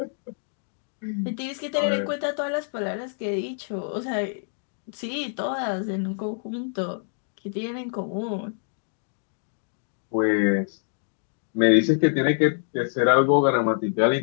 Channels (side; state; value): right; silent; digital silence